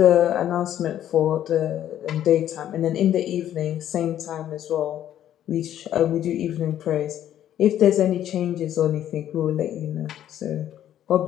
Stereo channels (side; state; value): right; quieter; 11.3 dB